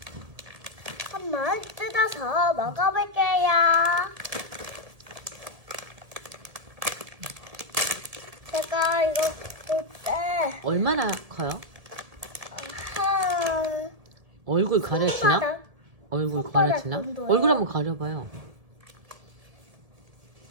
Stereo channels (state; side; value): late; left; 1.8 ms